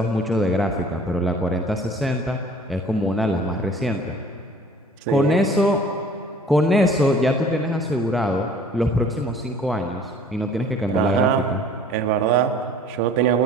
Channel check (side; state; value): both; normal; correlation 0.50